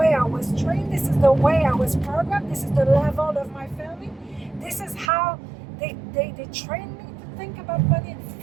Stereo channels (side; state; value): left; drops out; at 5.1 s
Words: I was trained? This is the way I was programmed? This is the level of my family? This is how they trained me to think about money and